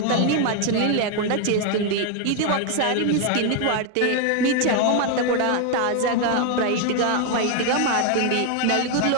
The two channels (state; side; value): different; both; correlation 0.01